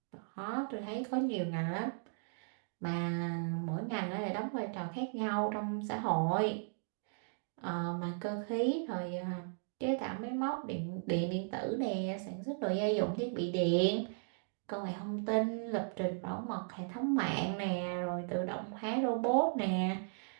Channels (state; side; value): silent; left; digital silence